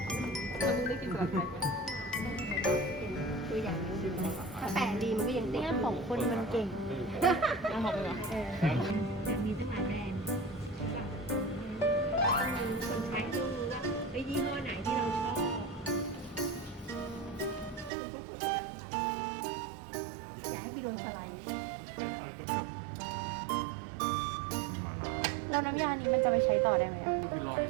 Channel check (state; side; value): drops out; left; at 17.9 s